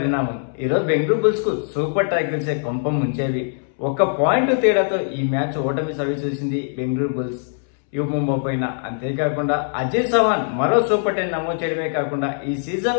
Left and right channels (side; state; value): right; silent; 65 dB below the other